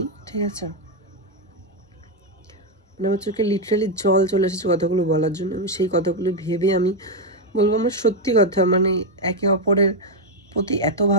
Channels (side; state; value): both; normal; correlation 0.03